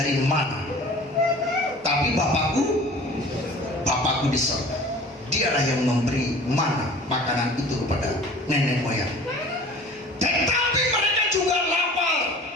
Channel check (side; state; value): both; normal; correlation 0.44